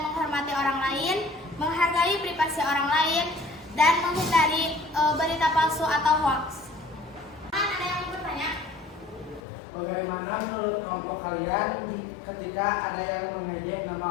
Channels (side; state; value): right; drops out; at 9.4 s